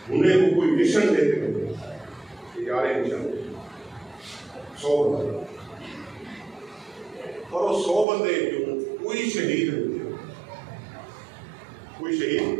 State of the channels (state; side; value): drops out; left; at 8.1 s